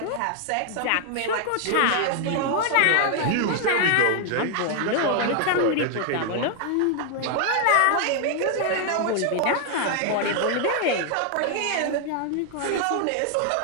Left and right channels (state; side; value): different; both; correlation 0.00